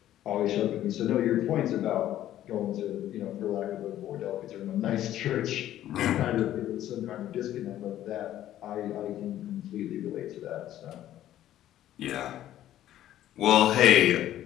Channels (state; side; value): quieter; right; 12.6 dB